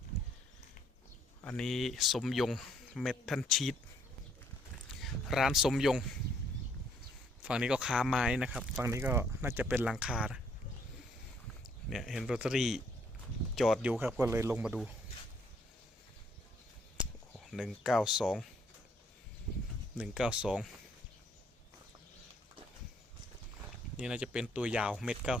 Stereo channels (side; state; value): both; normal; correlation 0.67